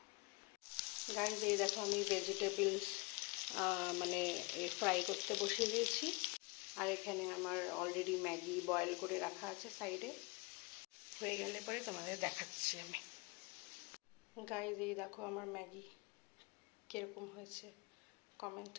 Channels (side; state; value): right; quieter; 27.0 dB